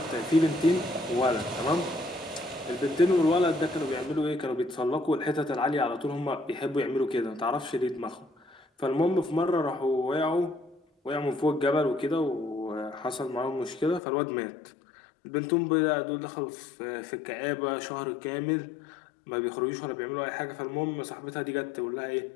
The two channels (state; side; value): drops out; right; at 14.0 s